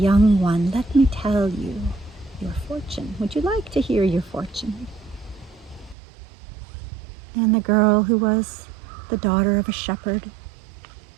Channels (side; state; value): left; drops out; at 6.0 s